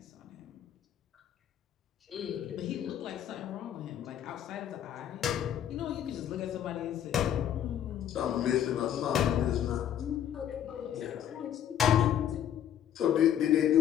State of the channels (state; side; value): quieter; right; 10.1 dB